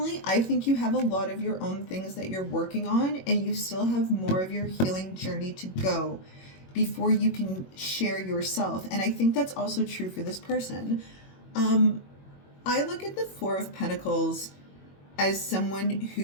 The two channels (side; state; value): right; late; 21 ms